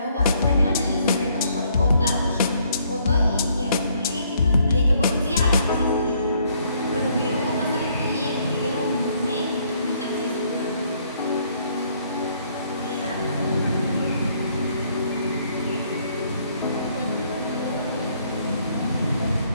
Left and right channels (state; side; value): inverted; both; correlation -0.67